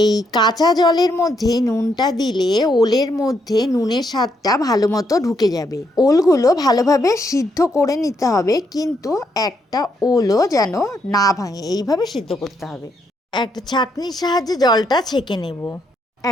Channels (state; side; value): normal; both; correlation 0.76